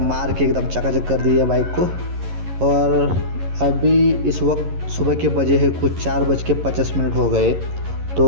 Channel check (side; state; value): left; late; 11 ms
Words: मार के एकदम चकाचक कर दी है बाइक को। और अभी इस वक्त सुबह के बजे है कुछ 4:50 हो गए। तो